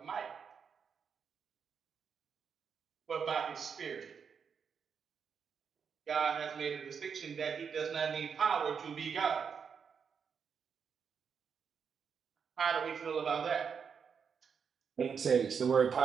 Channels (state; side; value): quieter; left; 6.5 dB